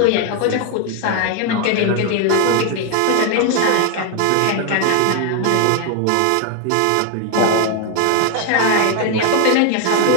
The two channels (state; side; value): different; both; correlation 0.01